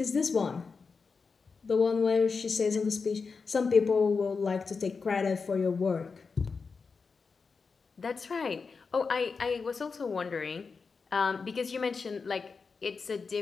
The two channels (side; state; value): right; quieter; 4.9 dB